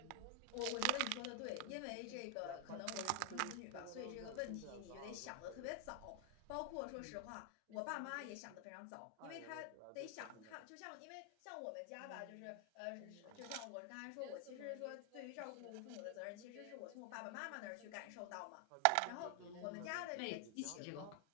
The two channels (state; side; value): different; both; correlation 0.00